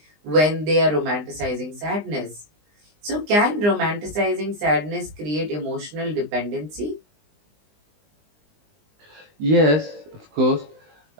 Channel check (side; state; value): left; late; 20 ms